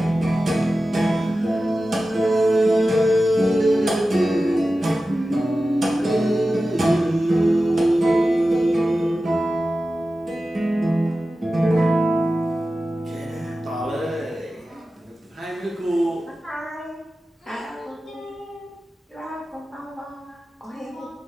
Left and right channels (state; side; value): normal; both; correlation 0.94